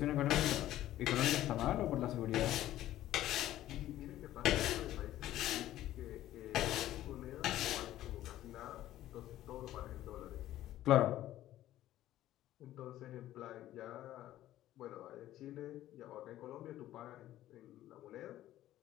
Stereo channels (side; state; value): right; quieter; 13.8 dB